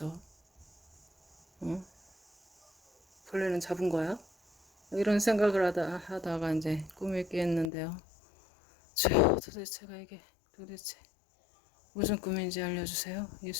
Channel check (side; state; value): right; drops out; at 7.7 s